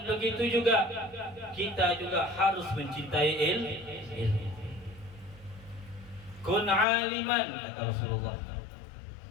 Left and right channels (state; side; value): drops out; right; at 6.9 s